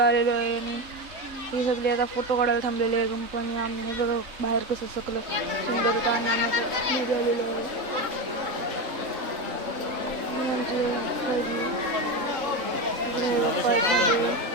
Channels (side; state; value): left; late; 3.7 ms